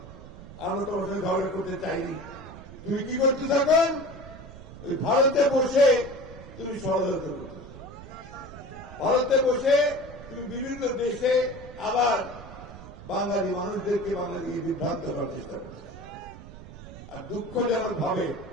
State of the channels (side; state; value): right; noise; rumble, 15 dB below the sound